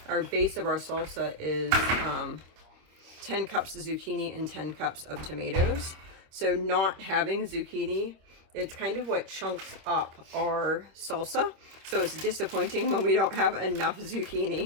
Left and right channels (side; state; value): left; late; 26 ms